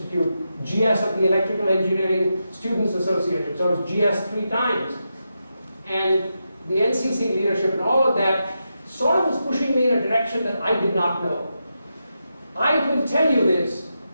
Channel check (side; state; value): both; inverted; correlation -0.87